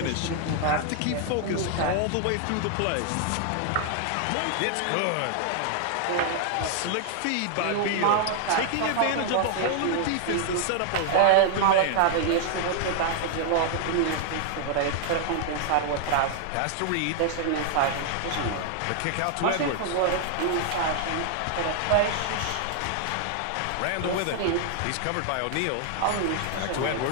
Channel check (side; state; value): both; different; correlation 0.00